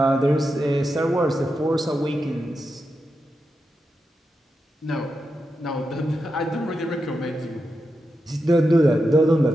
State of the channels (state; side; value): normal; both; correlation 0.88